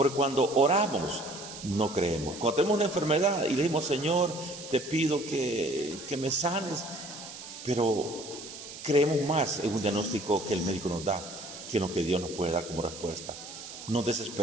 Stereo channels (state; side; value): noise; right; hiss, 12 dB below the sound